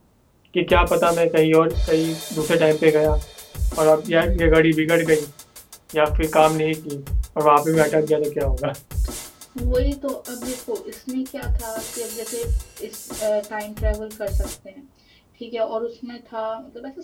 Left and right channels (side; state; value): both; identical; correlation 1.00